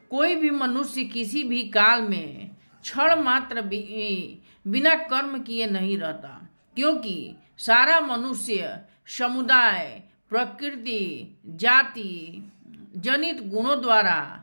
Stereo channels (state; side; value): inverted; both; correlation -1.00